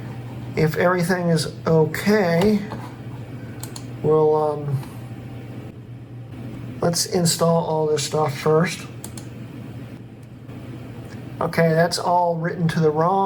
If everything is okay, we'll let's install all this stuff first. Okay, that's all written to the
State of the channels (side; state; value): both; identical; correlation 1.00